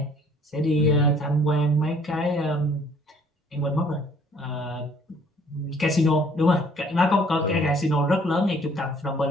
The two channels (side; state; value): both; normal; correlation 0.58